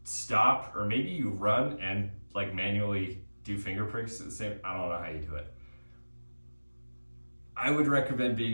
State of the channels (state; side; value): inverted; both; correlation -1.00